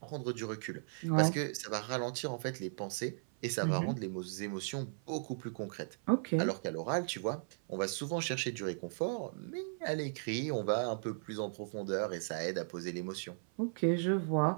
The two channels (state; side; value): silent; left; 53 dB below the other